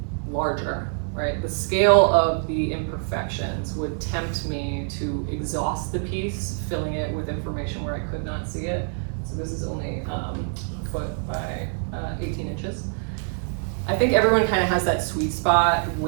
larger, right, the scale of the imperfections would tempt me to exhaust the piece, filling it with information where I could not see it. So this is only a foot by 18 inches. I think everyone kind of has that sweet spot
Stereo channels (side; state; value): left; silent; 62 dB below the other